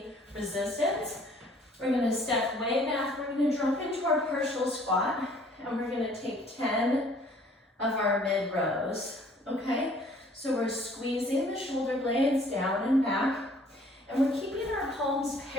resistance. We're going to step way back. We're going to drop into our partial squat, and we're going to take 10 of our mid rows, okay? So we're squeezing the shoulder blades down and back, and we're keeping our palms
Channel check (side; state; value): both; normal; correlation 0.57